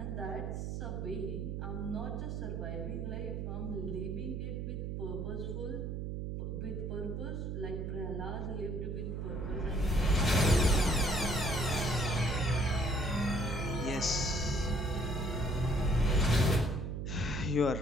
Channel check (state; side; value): noise; right; hum, 3 dB below the sound